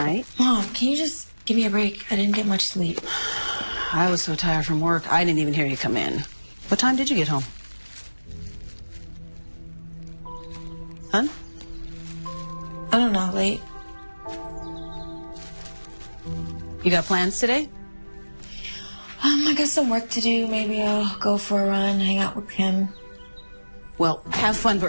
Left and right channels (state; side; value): inverted; both; correlation -1.00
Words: Mom, can you just give me a break? I didn't get much sleep. I was so tired from work, I didn't even hear you come in. What time did you get home? Huh? I don't know, late. You got plans today? I got some work to do. Maybe I'll go for a run, hang out with him. Well, have fun,